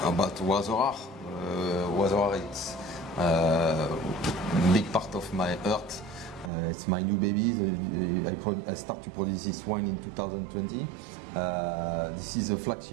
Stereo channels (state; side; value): drops out; left; at 6.5 s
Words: about Wazorar. Wazorar, it's a big part of my heart. It's my new baby. I start to produce this wine in 2020. This is a